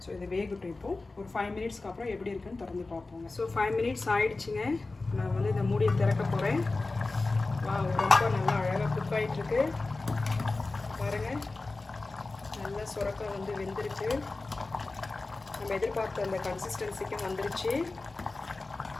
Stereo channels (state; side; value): quieter; right; 3.4 dB